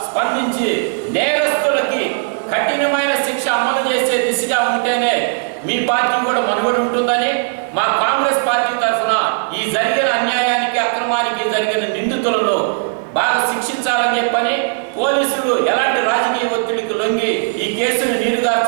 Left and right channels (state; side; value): silent; left; digital silence